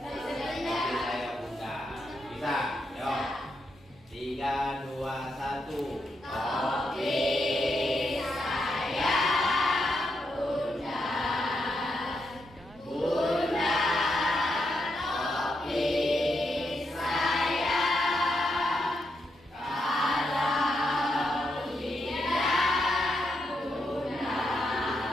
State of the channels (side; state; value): both; normal; correlation 0.82